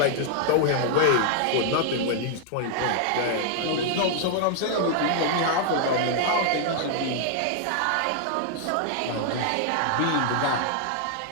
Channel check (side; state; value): both; different; correlation -0.01